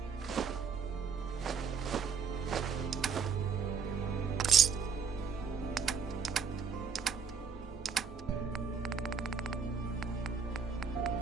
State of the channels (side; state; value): left; quieter; 6.1 dB